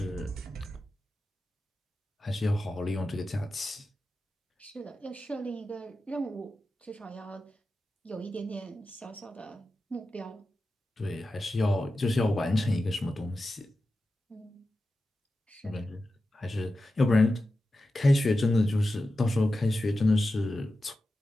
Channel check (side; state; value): both; normal; correlation 0.92